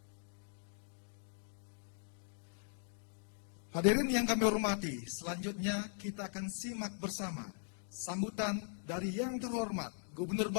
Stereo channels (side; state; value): right; silent; digital silence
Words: Hadirin yang kami hormati, selanjutnya kita akan simak bersama sambutan dari yang terhormat Gubernur